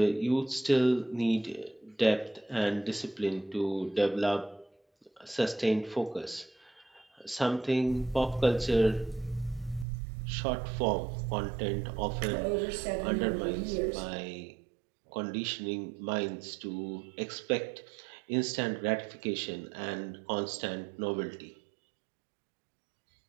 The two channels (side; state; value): left; drops out; at 9.9 s